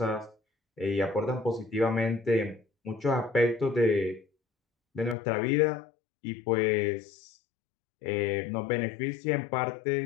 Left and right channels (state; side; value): drops out; right; at 5.2 s